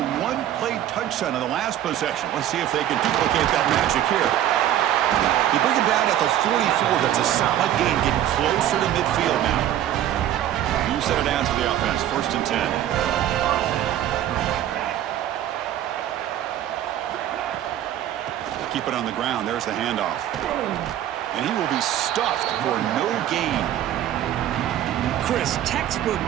one-play touchdown in the last possession. Let's see if they can duplicate that magic here. They bring him down at the 44. That's a solid gain, getting closer to midfield now. set it down to the offense. 1st and 10. Keep it on the ground. There's the handoff. And he will be stuffed for no gain. Chris, textbook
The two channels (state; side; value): quieter; left; 11.7 dB